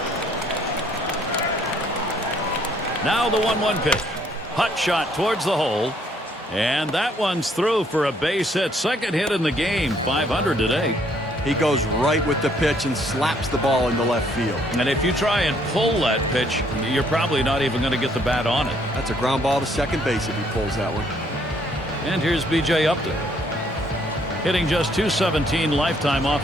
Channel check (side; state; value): both; normal; correlation 0.66